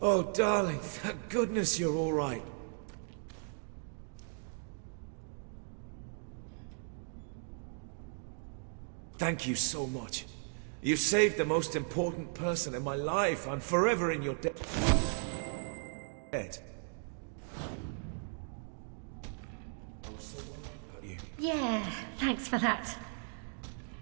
Oh, darling, thank goodness you're all right. Thank you so much. You saved the most important person in my life. I'm forever in your debt. I was so worried about you. Yeah, thanks for that.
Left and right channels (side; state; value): left; silent; 53 dB below the other